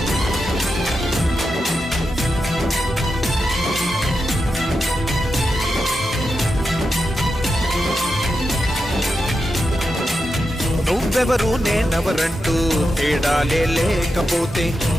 నువ్వెవరు నేనెవరంటూ తేడాలే లేకపోతే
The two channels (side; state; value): both; normal; correlation 0.88